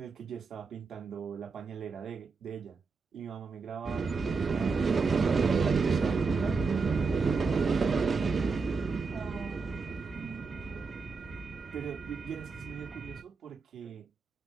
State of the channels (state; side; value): quieter; left; 4.6 dB